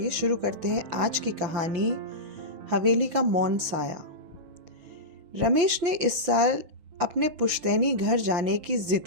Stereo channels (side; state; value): left; late; 6.2 ms